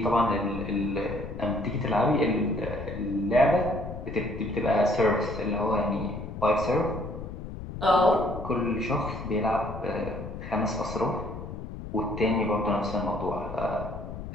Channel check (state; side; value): noise; left; rumble, 9 dB below the sound